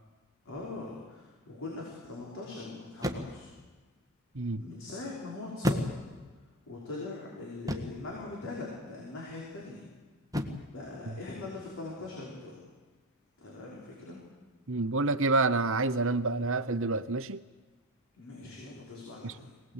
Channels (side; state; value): both; normal; correlation 0.14